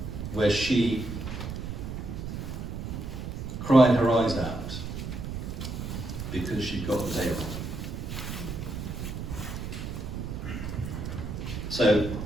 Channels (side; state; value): right; noise; rumble, 5 dB below the sound